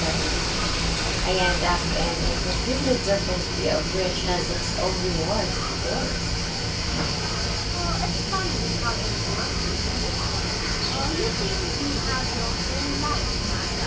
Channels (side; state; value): both; identical; correlation 1.00